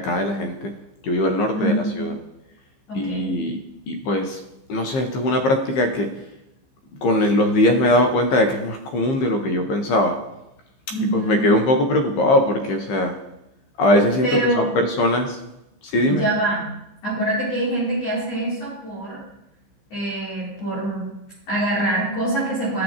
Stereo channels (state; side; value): late; right; 15 ms